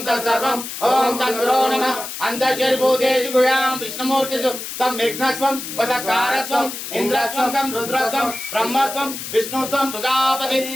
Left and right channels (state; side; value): noise; left; hiss, 8 dB below the sound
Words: तत्सर्वम ओम तद्गुरो नमः। अंतर्शरीभूतेषु गुह्यां विष्णुमूर्तिषु तं विघ्नस्वं वचस्कारस्वं इंद्रस्वं तं रुद्रस्वं ब्रह्मस्वं विष्णुस्वं सुजापति